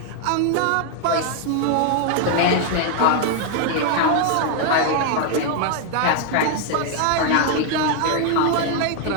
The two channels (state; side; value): different; both; correlation 0.00